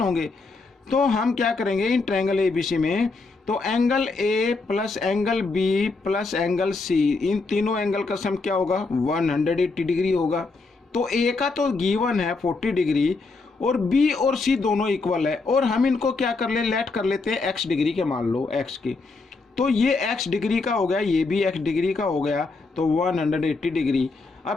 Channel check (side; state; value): right; quieter; 3.9 dB